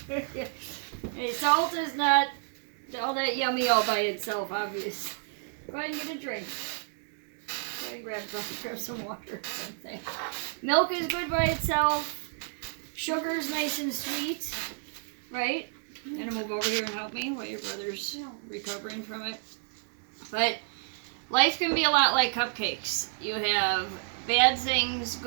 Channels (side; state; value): left; silent; digital silence